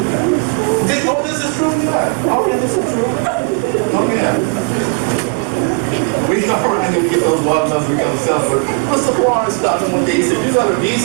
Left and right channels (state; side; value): quieter; left; 35.4 dB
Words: Oh, this is true? Yeah. Oh, yeah, this is true. Oh, yeah. We come around and we get those watermelons, we come selling. But Mr. Florence stopped me one day, he said, you're going to be